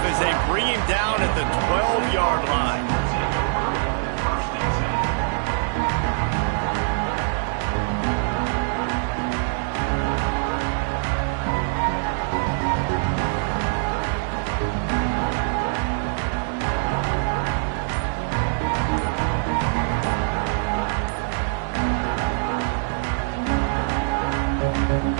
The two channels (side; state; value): left; silent; 63 dB below the other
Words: as they bring him down at the 12-yard line.